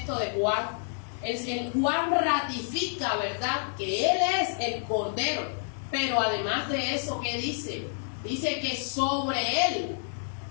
de Juan. El Juan ratifica, ¿verdad?, que Él es el Cordero. Pero además de eso, ¿qué dice? Dice que sobre Él,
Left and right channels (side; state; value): right; silent; digital silence